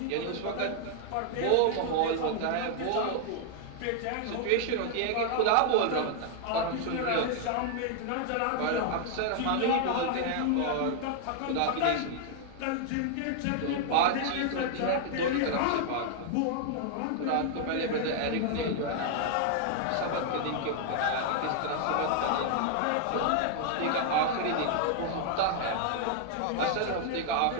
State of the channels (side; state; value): both; different; correlation 0.00